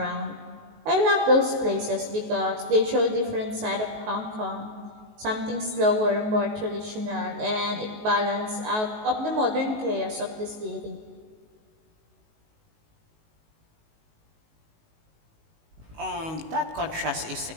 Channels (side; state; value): left; late; 19 ms